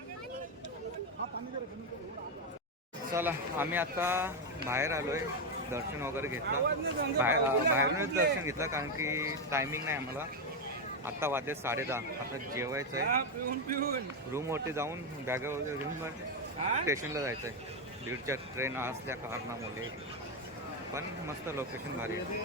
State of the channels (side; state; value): both; normal; correlation 0.07